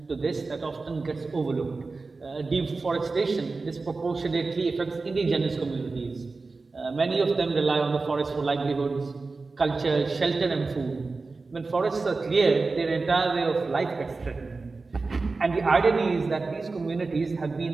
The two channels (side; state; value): left; quieter; 3.9 dB